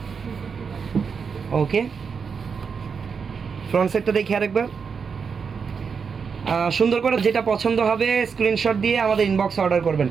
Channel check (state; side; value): quieter; left; 5.9 dB